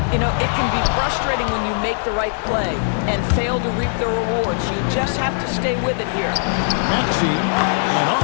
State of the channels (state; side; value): silent; right; digital silence